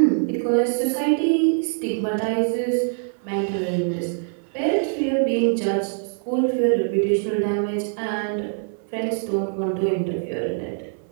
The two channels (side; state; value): left; silent; 57 dB below the other